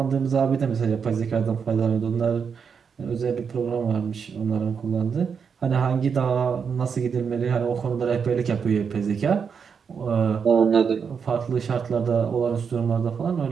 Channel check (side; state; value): left; quieter; 6.4 dB